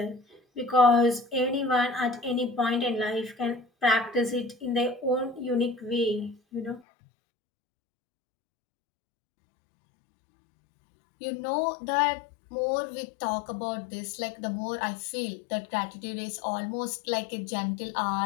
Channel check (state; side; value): drops out; right; at 6.8 s